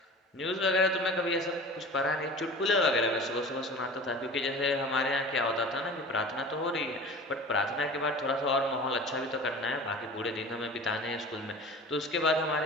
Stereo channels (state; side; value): normal; both; correlation 0.38